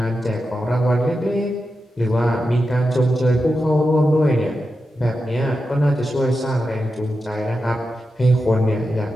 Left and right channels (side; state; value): both; normal; correlation 0.90